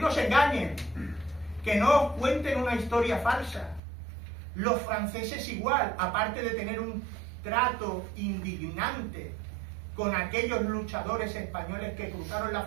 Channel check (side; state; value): left; drops out; at 3.8 s